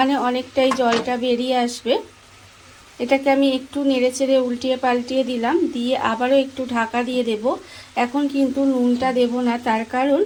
অনেকটাই জলটা বেরিয়ে আসবে। এটাকে আমি একটু নেড়েচেড়ে উল্টিয়ে পাল্টিয়ে দিলাম, দিয়ে আবারও একটু ঢাকা দিয়ে দেব। এখন কিন্তু নুনটা দেব না, তার কারণ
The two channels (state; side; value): identical; both; correlation 1.00